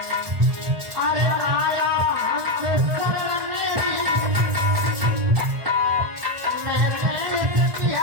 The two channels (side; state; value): left; late; 1.4 ms